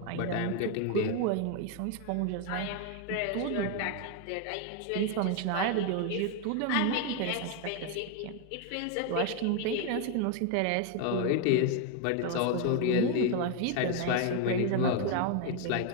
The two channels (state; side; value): different; both; correlation 0.01